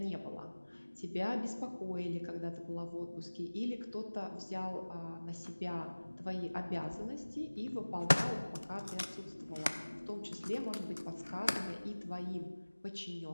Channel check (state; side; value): inverted; both; correlation -1.00